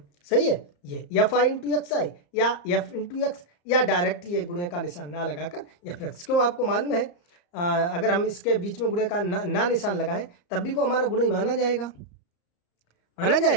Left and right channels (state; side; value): late; right; 34 ms